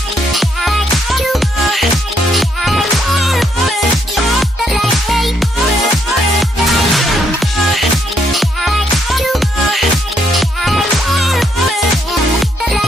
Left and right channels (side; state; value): both; normal; correlation 0.73